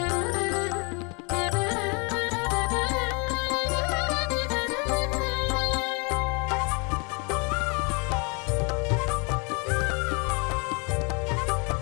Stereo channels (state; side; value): quieter; right; 32.9 dB